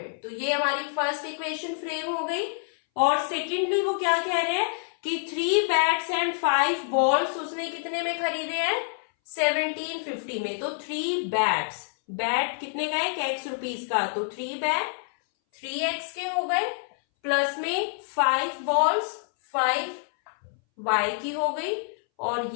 तो ये हमारी फर्स्ट इक्वेशन फ्रेम हो गई। और सेकेंडली वो क्या कह रहे हैं कि 3 बैट्स एंड 5 बॉल्स उसने कितने में खरीदे हैं, 1750 में। तो 3 बैट्स, बैट कितने का है, X रुपीस का, तो 3 बैट 3X के हो गए। प्लस में 5 बॉल्स 5y की हो गई, और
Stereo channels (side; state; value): right; silent; 60 dB below the other